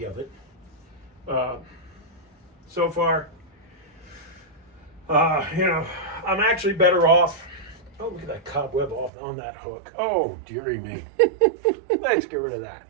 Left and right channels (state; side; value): drops out; left; at 9.1 s